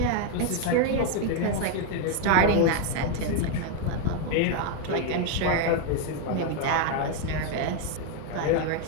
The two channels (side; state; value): both; different; correlation 0.01